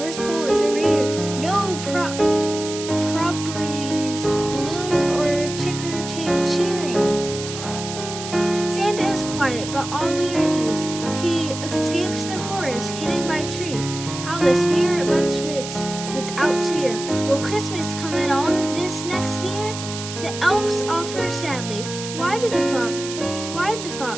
Pole is a rear. No properties, balloons, or ticker tape cheering. Santa is quiet, but oddly at ease. He escapes the forest, hidden by trees. How the spirit bunch waits without cheer. Will Christmas come at all this next year? The elves offer sadly, why did the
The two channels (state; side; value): noise; right; hiss, 9 dB below the sound